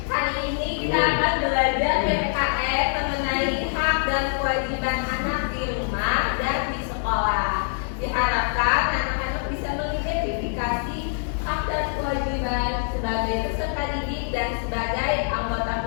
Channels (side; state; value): right; silent; digital silence